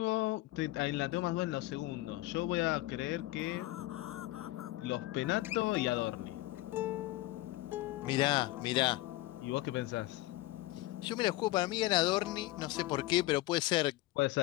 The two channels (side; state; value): right; quieter; 18.0 dB